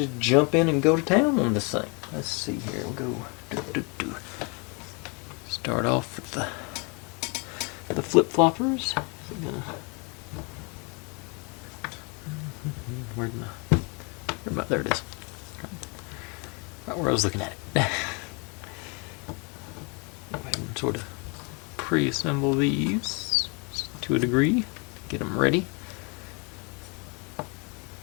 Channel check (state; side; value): quieter; right; 32.9 dB